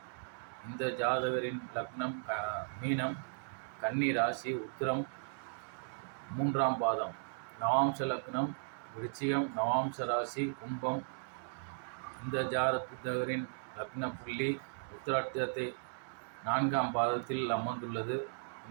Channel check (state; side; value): silent; left; digital silence